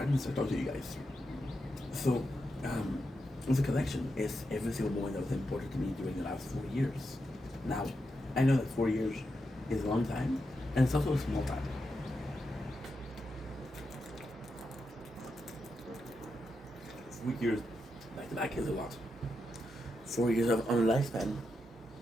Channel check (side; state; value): both; normal; correlation 0.86